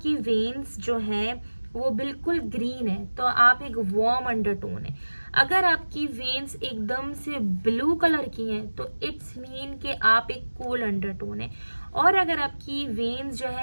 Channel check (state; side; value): inverted; both; correlation -1.00